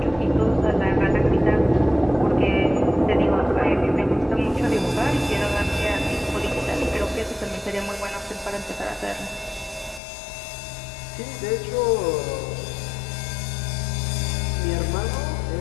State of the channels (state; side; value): drops out; right; at 10.0 s